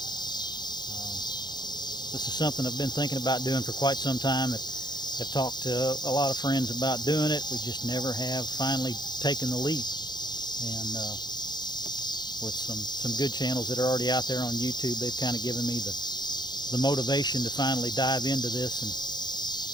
This is something I've been thinking about doing for quite some time. I've talked to a lot of friends about doing it. We just never have finally taken the leap. And with some good channels that are already out there on YouTube, they've kind of given me the motivation to finally dive into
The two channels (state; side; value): late; right; 0.21 ms